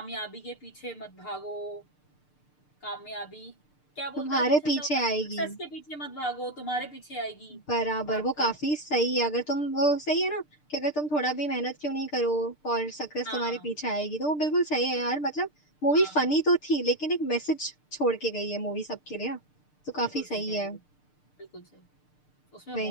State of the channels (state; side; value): late; right; 6.7 ms